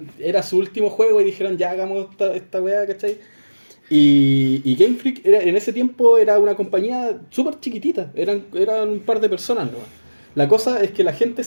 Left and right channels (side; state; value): both; inverted; correlation -1.00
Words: era su último juego y dijeron, ya hagamos esta weá, ¿cachai? Y Game Freak en ese tiempo era una compañía súper chiquitita, eran un par de personas, ¿no? La cosa es que la gente